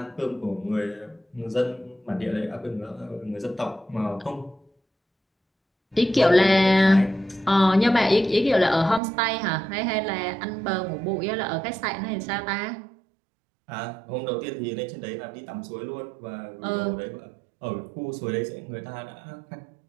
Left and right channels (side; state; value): left; drops out; at 9.0 s